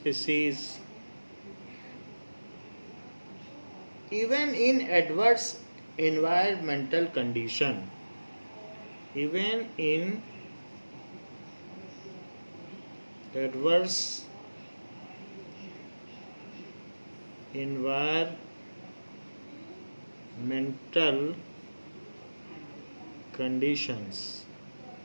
even in adverse environmental condition. Even in adverse environmental conditions.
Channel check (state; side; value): inverted; both; correlation -1.00